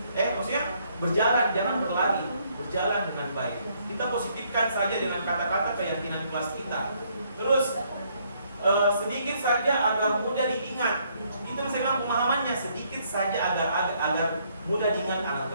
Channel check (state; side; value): inverted; both; correlation -0.69